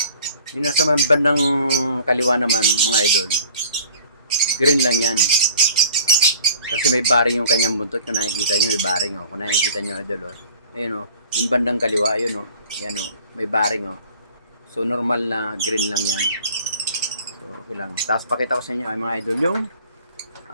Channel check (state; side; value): inverted; both; correlation -0.49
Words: Yung nasa bandang kaliwa naman mga idol, green lang yan kasi may baring yung kanyang buntot. Kung nakikita nyo may baring kung nakikita nyo idol ayun yung bandang kaliwa ayun yan may baring so normal na green lang yan. So okay lang. Tapos pakita ko sa inyo ay mga idol yung